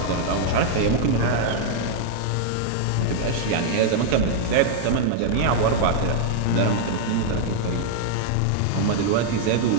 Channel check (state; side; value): different; both; correlation 0.00